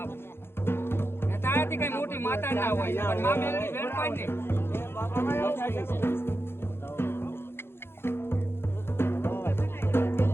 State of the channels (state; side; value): late; right; 0.11 ms